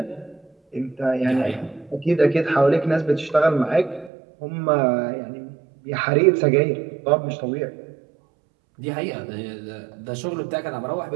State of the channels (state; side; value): drops out; left; at 4.1 s